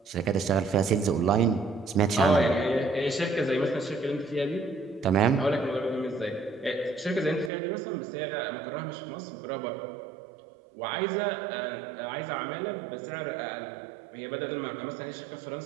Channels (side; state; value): left; drops out; at 7.5 s